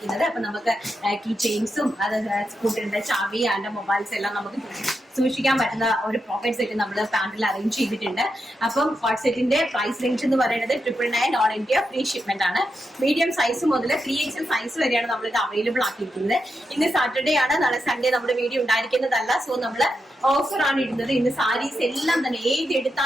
അപ്പൊ നമുക്ക് കീ ചെയിൻസും അത് സ്കൂട്ടറിന്റെ ചാവി ആൻഡ് മൊബൈൽസ് എല്ലാം നമുക്ക് സൂക്ഷിക്കാൻ പറ്റുന്ന ഒരു പോക്കറ്റ് സെറ്റ് നമ്മൾ പാന്റിൽ അറേഞ്ച് ചെയ്തിട്ടുണ്ട്. അപ്പം കോട്ട് സെറ്റിന്റെ പ്രൈസ് റേഞ്ച് എന്ന് പറയുന്നത് 999 ഓൾ ഇന്ത്യ ഫ്രീ ഷിപ്മെന്റ് ആണ്. മീഡിയം സൈസ് മുതൽ 3XL സൈസ് വരെയാണ് നമ്മൾ ഇത് അവൈലബിൾ ആക്കിയിരിക്കുന്നത്. ഇന്ന് സാറ്റർഡേ ആണ്, നാളെ സൺഡേ നമ്മുടെ വീഡിയോ ഉണ്ടായിരിക്കുന്നതല്ല. സോ നമ്മൾ ഓഫർ ആണ് ഇടുന്നത്. ഇന്ന് സാരീസ് എല്ലാം തന്നെ ഏത്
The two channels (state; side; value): normal; both; correlation 0.86